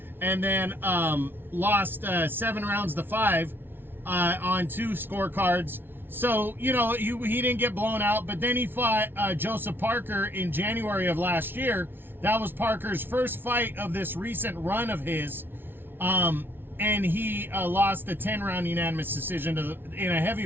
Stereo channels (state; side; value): late; left; 0.10 ms